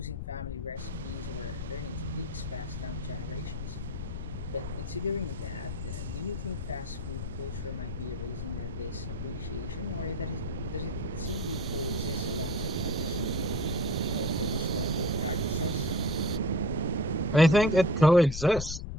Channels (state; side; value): noise; left; rumble, 5 dB below the sound